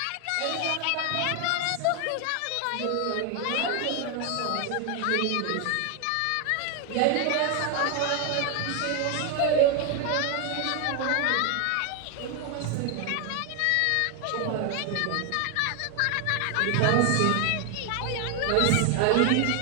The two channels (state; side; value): different; both; correlation 0.01